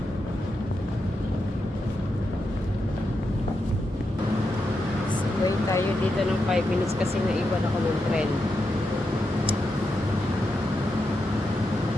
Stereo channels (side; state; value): both; normal; correlation 0.86